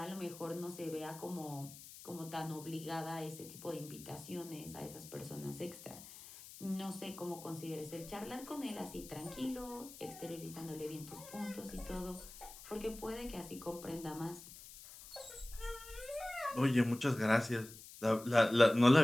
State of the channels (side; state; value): left; noise; hiss, 15 dB below the sound